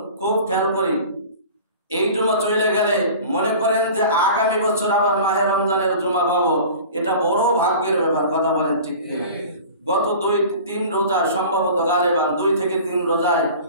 খুব খেয়াল করি। এই জুমা চলে গেলে মনে করেন যে আগামী বছর আবার মাহে রমজানের জুমা পাবো, এটা বড় ভাগ্যের ব্যাপার। কথা বলেন ঠিক কিনা? গত 2-3 রোজা সম্ভবত গালেবান 2 থেকে 3 রোজায়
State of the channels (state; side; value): inverted; both; correlation -0.40